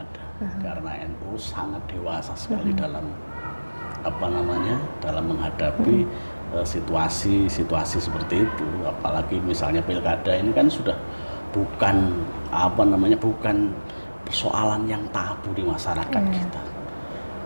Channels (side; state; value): both; inverted; correlation -1.00